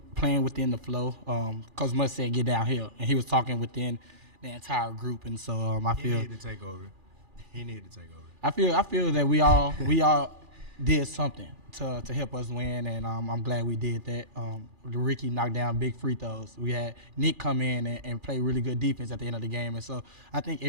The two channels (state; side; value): late; left; 2.4 ms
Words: the flow. Coach Mutz said get downhill, and he was talking within the entire group, and so I feel he needed to take over. I feel that we all did something to help us win, and I'm glad we did that. Ricky knocked down big free throws. We had Nick come in and play really good defense at the end of the game, and so I think